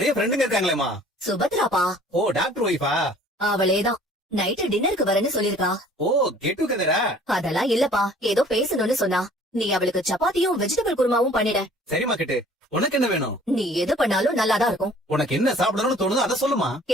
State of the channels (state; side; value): normal; both; correlation 0.52